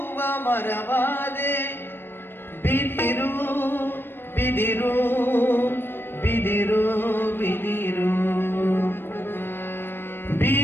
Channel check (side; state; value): right; late; 0.10 ms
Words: ಮರವಾದೆ ಬಿದಿರು ಬಿದಿರು ಬಿದಿರು ಬಿದಿರು